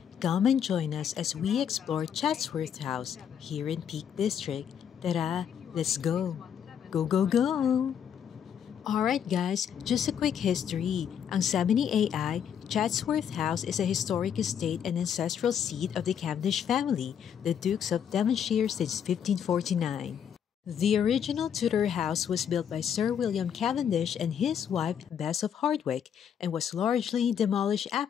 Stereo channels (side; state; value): right; quieter; 8.4 dB